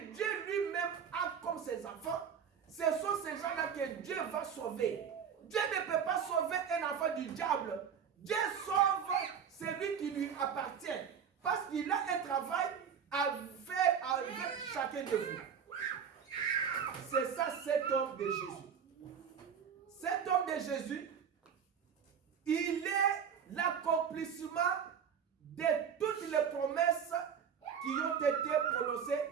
Dieu lui-même a comme ses enfants, ce sont ces gens-là que Dieu va sauver. Dieu ne peut pas sauver un enfant du diable. Dieu sauve celui qui lui appartient. Parce qu'il a un travail à faire avec chacun de vous. C'est ça cet homme de Jésus. Cet homme de Jésus, il est l'accomplissement de toutes les promesses qui ont été prononcées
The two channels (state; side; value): quieter; left; 7.4 dB